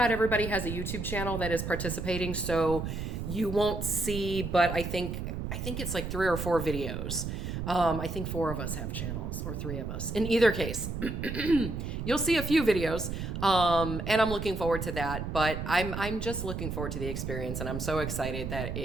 everybody has a YouTube channel that is participating, so you won't see, but I think it's like 3 or 4 videos. I think 4 of us have channels, or 3 of us. In either case, you'll see a few videos, and I'm looking forward to that. But I'm just looking forward to the experience, and I'm so excited that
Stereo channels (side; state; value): right; noise; rumble, 5 dB below the sound